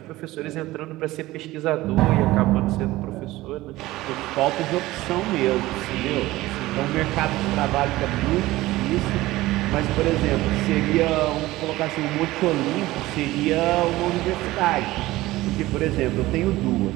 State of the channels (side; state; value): left; quieter; 17.8 dB